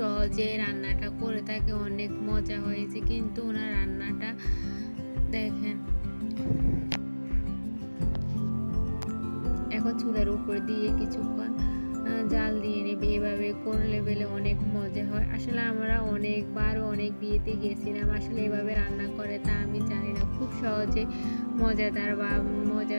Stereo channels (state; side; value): inverted; both; correlation -1.00